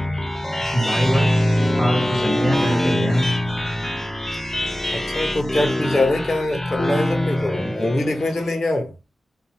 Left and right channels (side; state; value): both; normal; correlation 0.95